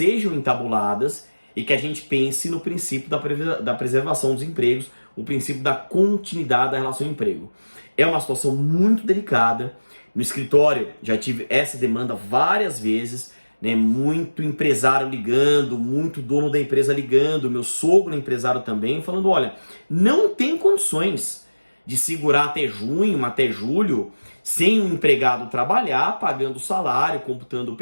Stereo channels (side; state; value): both; inverted; correlation -1.00